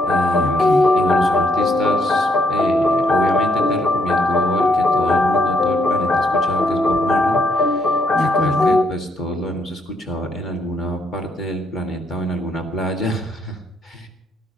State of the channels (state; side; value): normal; both; correlation 0.73